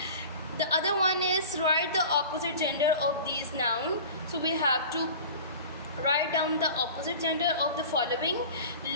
The other one is write the opposite gender of these nouns. So we have to write down the opposite gender of the following:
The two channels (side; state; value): both; inverted; correlation -0.39